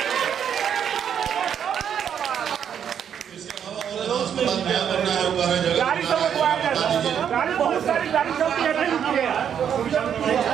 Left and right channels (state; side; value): quieter; left; 8.5 dB